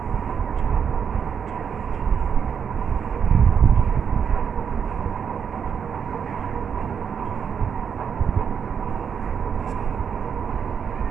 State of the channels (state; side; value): quieter; left; 7.2 dB